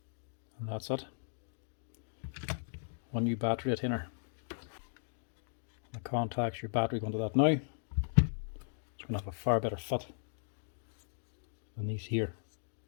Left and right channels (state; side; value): silent; right; digital silence